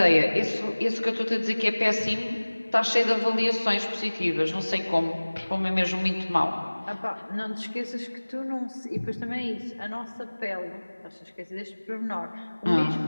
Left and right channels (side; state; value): both; inverted; correlation -1.00